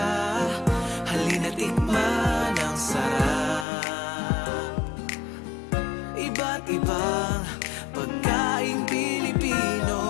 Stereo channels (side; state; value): right; drops out; at 3.7 s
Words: halina't tikman ang sarap. Iba't ibang pagkaing Pilipino,